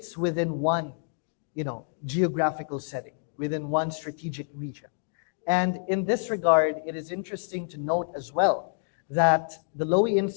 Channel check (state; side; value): silent; right; digital silence